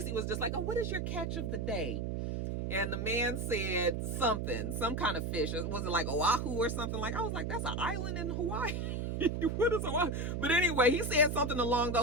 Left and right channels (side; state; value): right; noise; hum, 2 dB below the sound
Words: was just like, oh, what is your catch of the day? And the man said something, some kind of fish. Was it like Oahu or something? Like, I was like, that's an island in Hawaii. What is Oahu? But anyway, he said something along